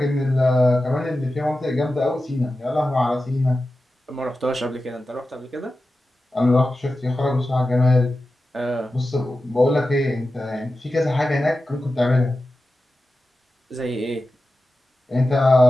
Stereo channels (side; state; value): both; normal; correlation 0.93